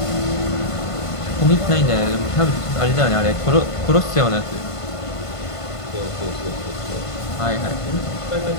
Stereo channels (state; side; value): late; right; 1.5 ms